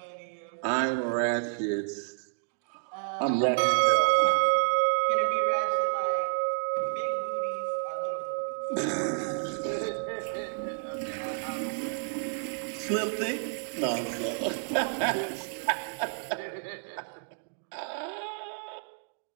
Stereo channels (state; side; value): silent; left; digital silence